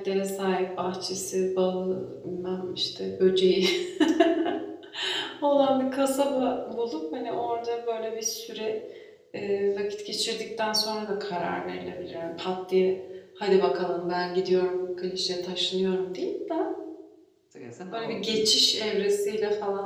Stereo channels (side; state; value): both; identical; correlation 1.00